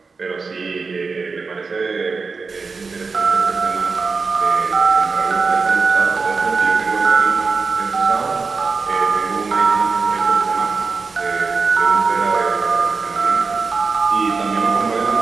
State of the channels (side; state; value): left; quieter; 4.5 dB